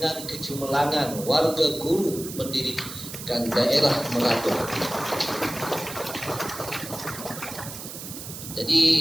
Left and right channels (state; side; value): noise; right; hiss, 10 dB below the sound